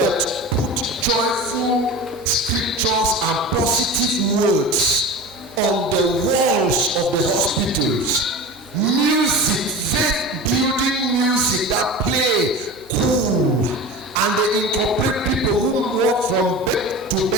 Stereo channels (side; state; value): both; normal; correlation 0.32